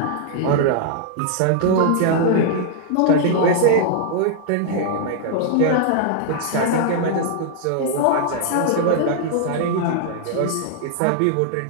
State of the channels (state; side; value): different; both; correlation -0.01